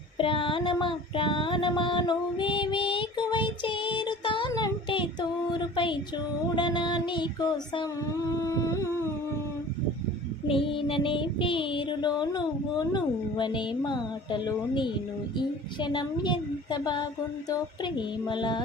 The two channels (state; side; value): normal; both; correlation 0.43